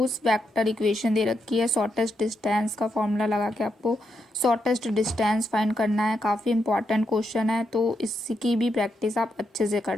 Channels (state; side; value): normal; both; correlation 0.82